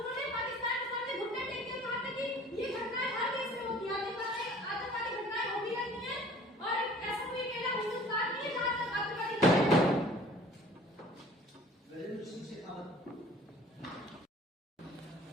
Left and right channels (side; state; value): both; normal; correlation 0.49